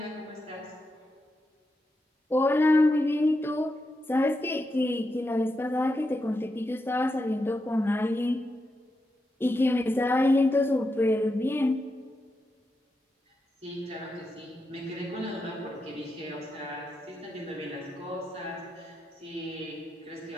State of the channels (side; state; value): both; normal; correlation 0.86